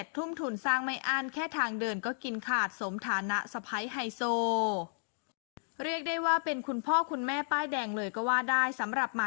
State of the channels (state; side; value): silent; right; digital silence